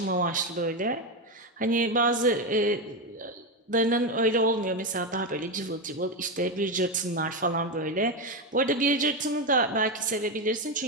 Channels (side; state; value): both; normal; correlation 0.11